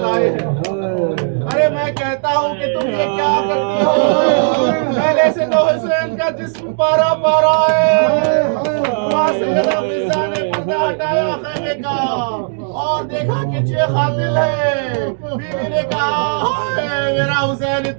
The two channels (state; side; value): silent; left; digital silence